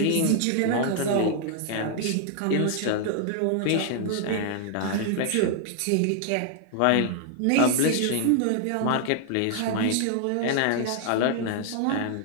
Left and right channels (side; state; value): both; different; correlation 0.00